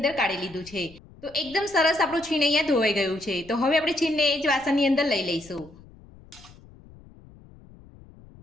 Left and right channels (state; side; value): noise; left; rumble, 23 dB below the sound